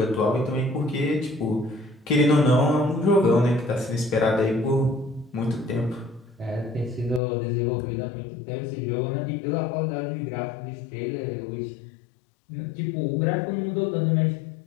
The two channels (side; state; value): right; drops out; at 7.2 s